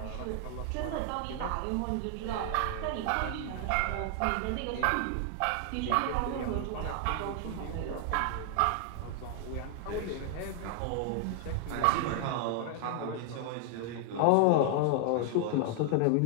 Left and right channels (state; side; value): different; both; correlation 0.00